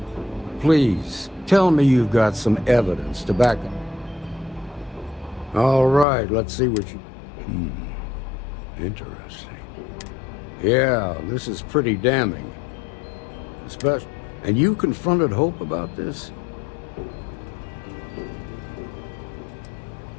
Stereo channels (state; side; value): drops out; right; at 6.1 s